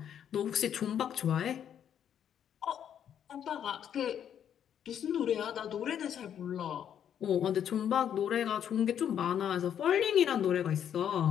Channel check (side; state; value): right; quieter; 9.2 dB